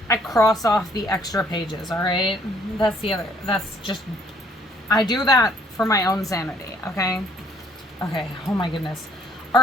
I cross off the extra pages, all right? I do that for my own sanity, okay? Okay, oh my goodness. All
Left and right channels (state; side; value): normal; both; correlation 0.62